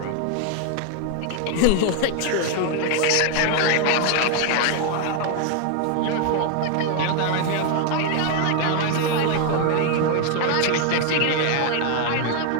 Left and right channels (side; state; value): both; different; correlation 0.01